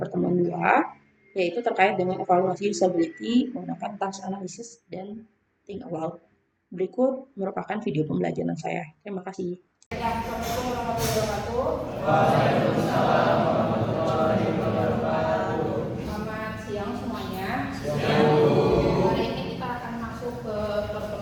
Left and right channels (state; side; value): identical; both; correlation 1.00